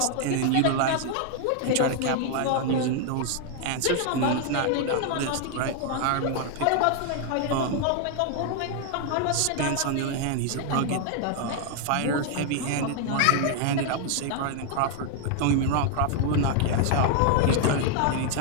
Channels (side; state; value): both; different; correlation 0.00